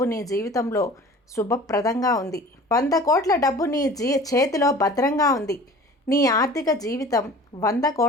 నీ జీవితంలో శుభప్రదంగా ఉంది. 100 కోట్ల డబ్బు నీ చేతిలో భద్రంగా ఉంది. నీ ఆర్థిక జీవితం 100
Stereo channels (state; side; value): normal; both; correlation 0.43